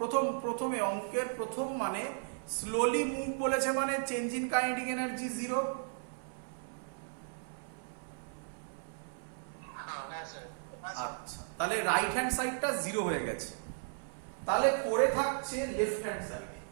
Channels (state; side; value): silent; left; 54 dB below the other